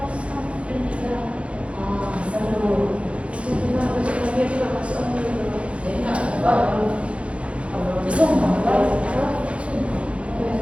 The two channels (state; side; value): late; left; 0.061 ms